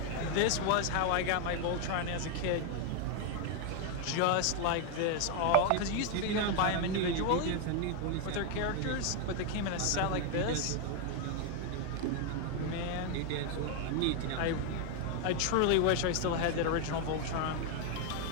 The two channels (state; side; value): different; both; correlation 0.01